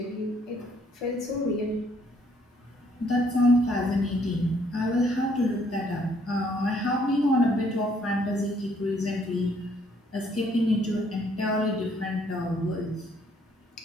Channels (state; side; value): normal; both; correlation 0.66